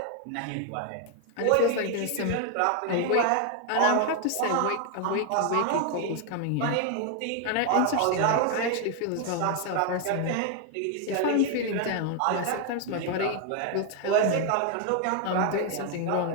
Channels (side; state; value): both; different; correlation 0.00